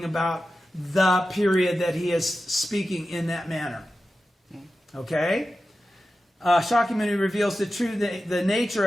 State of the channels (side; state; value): both; normal; correlation 0.93